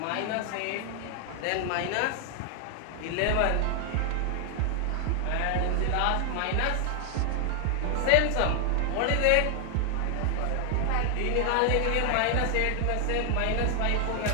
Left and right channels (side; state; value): both; different; correlation 0.00